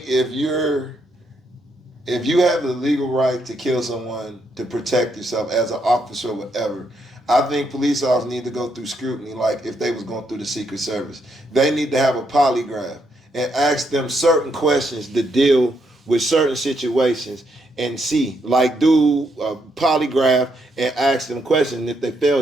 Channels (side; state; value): both; normal; correlation 0.77